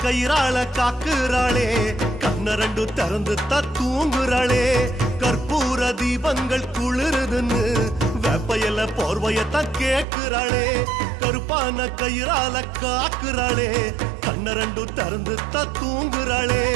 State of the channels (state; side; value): drops out; left; at 10.1 s